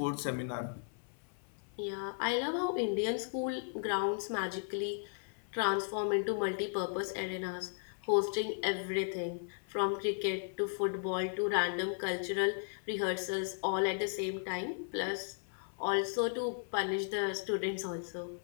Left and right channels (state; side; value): silent; right; 54 dB below the other